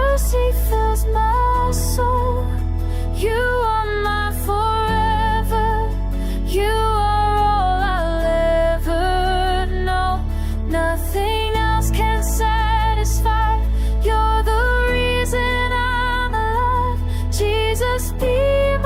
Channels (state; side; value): identical; both; correlation 1.00